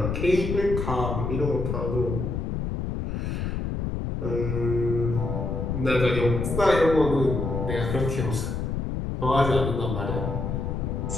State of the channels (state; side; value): noise; left; rumble, 2 dB below the sound